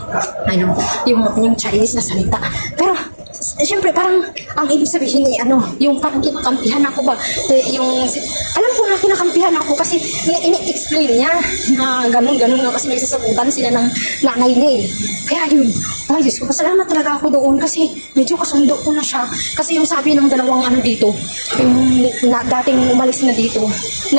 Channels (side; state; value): both; inverted; correlation -1.00